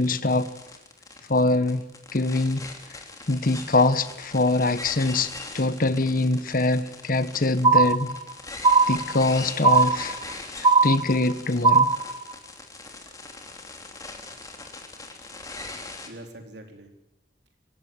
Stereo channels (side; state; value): both; normal; correlation 0.12